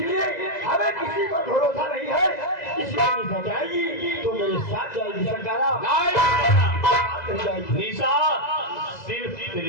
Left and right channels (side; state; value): right; late; 2.0 ms